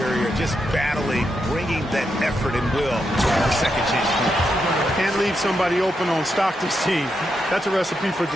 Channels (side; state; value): both; normal; correlation 0.84